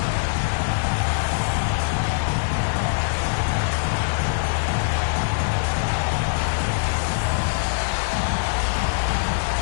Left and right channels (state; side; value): silent; right; 64 dB below the other